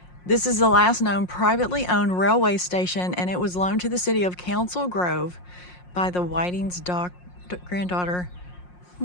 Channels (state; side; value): late; right; 5.6 ms